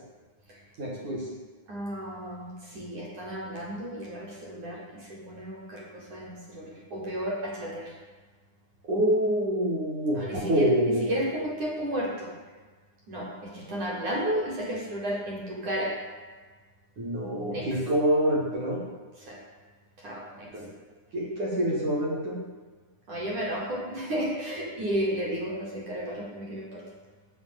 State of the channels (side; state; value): left; late; 9.8 ms